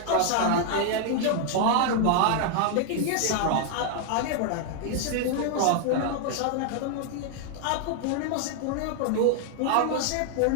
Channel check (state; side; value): different; both; correlation 0.00